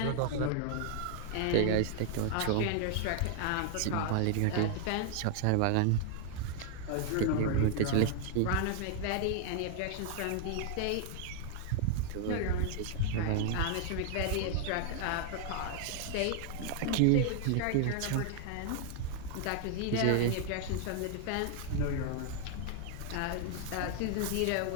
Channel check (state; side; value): different; both; correlation 0.00